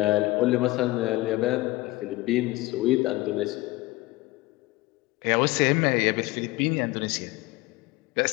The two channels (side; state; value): right; quieter; 19.9 dB